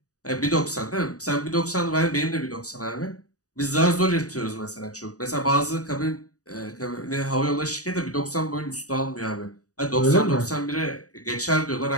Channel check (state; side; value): late; right; 0.67 ms